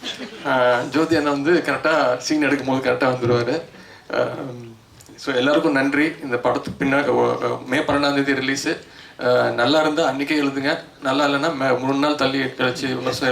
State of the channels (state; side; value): identical; both; correlation 1.00